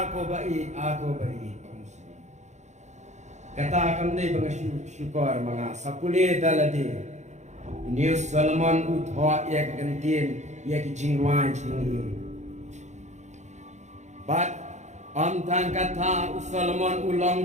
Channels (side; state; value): left; late; 0.34 ms